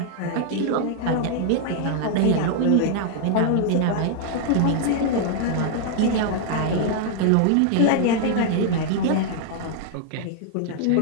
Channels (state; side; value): different; both; correlation -0.01